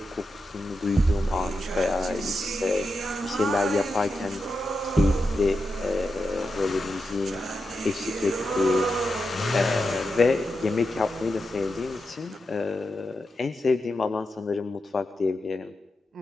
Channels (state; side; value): normal; both; correlation 0.88